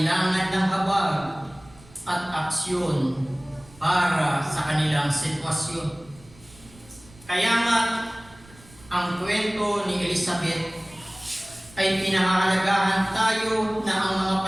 ng habag at aksyon para sa kanilang sitwasyon. Kaya nga, ang kwento ni Elizabeth ay pinahahalagahan tayo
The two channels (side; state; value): right; noise; rumble, 24 dB below the sound